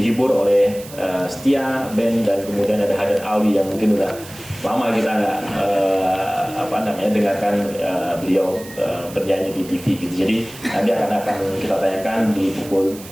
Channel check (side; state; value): right; noise; hiss, 17 dB below the sound